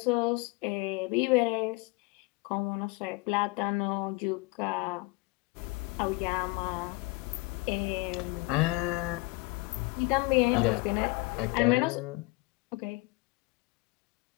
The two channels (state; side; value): quieter; right; 24.0 dB